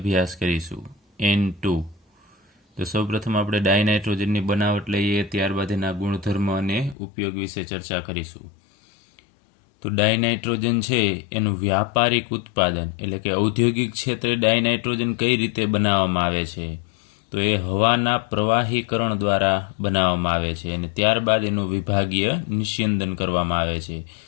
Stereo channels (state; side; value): drops out; right; at 7.0 s